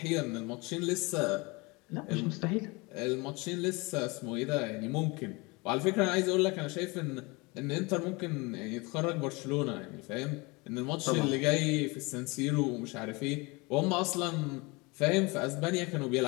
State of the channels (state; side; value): quieter; right; 26.2 dB